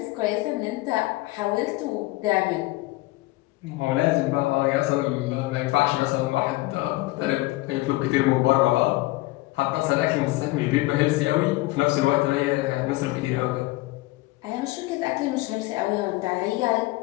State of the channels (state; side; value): quieter; right; 19.9 dB